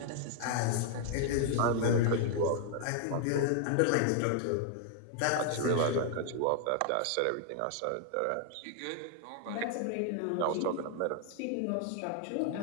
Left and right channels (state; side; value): different; both; correlation 0.00